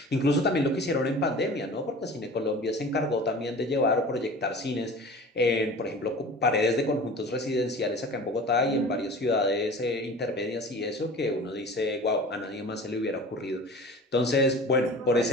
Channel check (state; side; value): normal; both; correlation 0.40